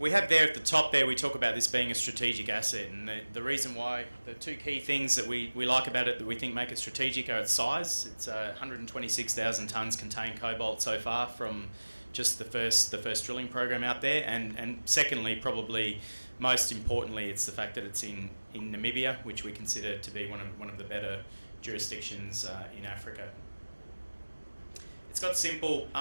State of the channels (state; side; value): inverted; both; correlation -1.00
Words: have there at the top there, we talk about this being a strategic asset, and the reason why, the two key things that we like about it that we think make it strategic are its size. It's 126,000 tonnes contained cobalt so far from just the first drilling program out there, and secondly, probably most importantly, it's the fact that it's in Namibia, which we consider to be one of the better jurisdictions in Africa. It's got simple,